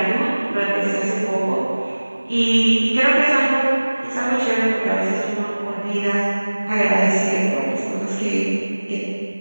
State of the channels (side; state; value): both; inverted; correlation -1.00